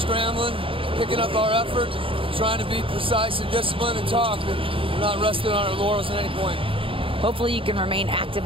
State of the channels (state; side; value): late; left; 0.26 ms